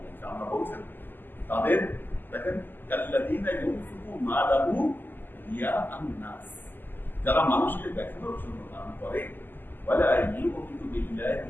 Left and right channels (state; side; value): late; right; 0.091 ms